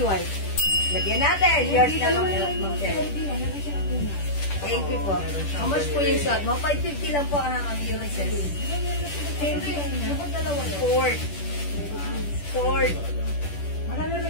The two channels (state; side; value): late; right; 10 ms